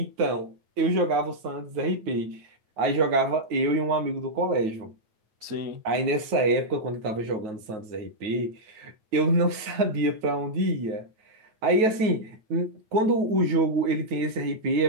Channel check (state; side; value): late; left; 9.3 ms